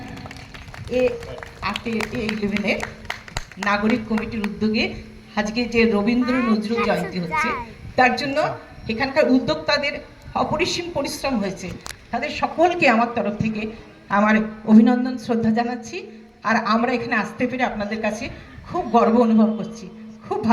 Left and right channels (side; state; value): both; identical; correlation 1.00